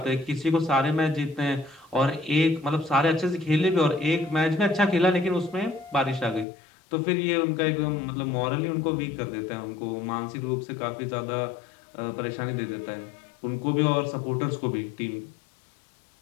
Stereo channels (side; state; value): right; drops out; at 6.5 s